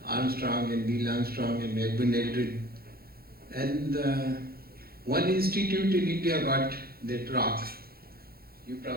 Armstrong and Neil Armstrong and Edwin Aldrin. And one institute in India got that rock. You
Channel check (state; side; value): late; left; 0.44 ms